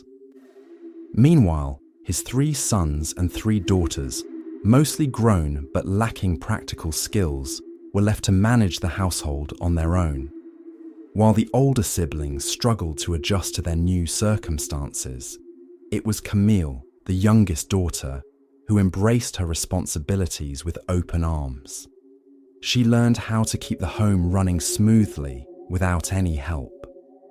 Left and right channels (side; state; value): both; identical; correlation 1.00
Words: Meanwhile, his 3 sons and 3 daughters, mostly grown but lacking practical skills, were left to manage the household on their own. While the older siblings struggled to adjust to their new circumstances, it was Camille, the youngest daughter, who embraced her responsibilities with open arms. She learned how to keep the home running smoothly without any help.